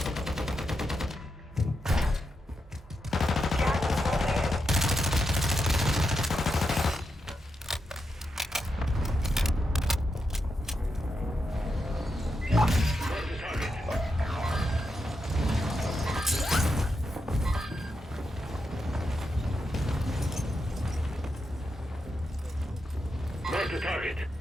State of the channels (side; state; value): both; normal; correlation 0.86